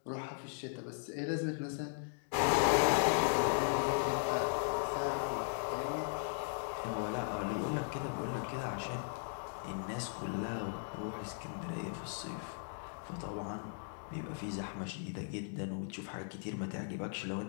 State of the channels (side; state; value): right; silent; digital silence